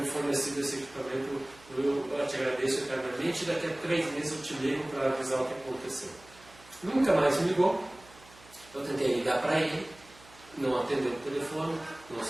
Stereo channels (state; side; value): noise; right; hum, 24 dB below the sound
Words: fornecido esse equipamento. Eu te agradeço eternamente, e daqui a 3 meses eu te ligo para avisar o que aconteceu. Nunca mais me ligou, Eu tentei ligar para ele, não atendeu o telefone, não